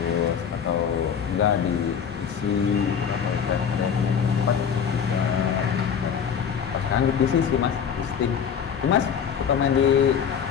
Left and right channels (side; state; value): right; quieter; 7.5 dB